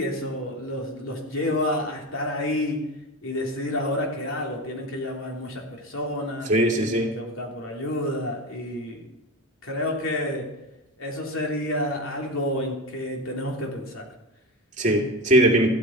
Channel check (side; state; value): both; normal; correlation 0.22